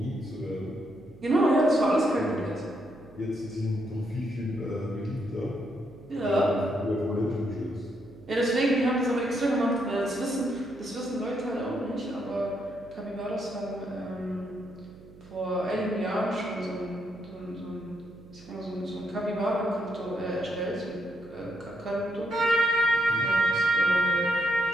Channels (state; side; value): noise; right; hum, 21 dB below the sound